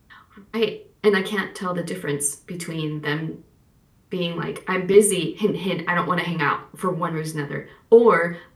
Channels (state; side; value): identical; both; correlation 1.00